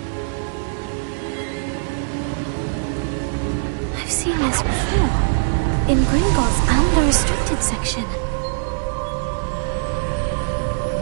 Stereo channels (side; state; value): left; silent; 63 dB below the other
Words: I've seen this before. In Gringotts and the restricted section.